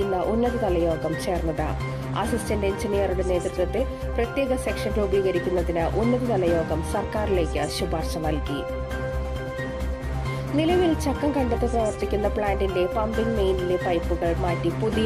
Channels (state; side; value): identical; both; correlation 1.00